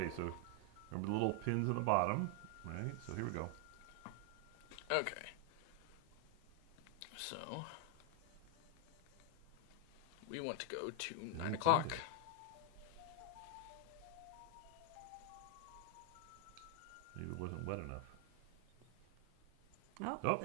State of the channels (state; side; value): different; both; correlation 0.00